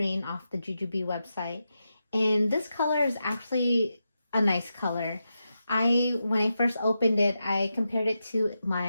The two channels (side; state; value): both; inverted; correlation -0.88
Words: off the Jujube website. And this color is actually a nice color. When I first opened it, I compared it to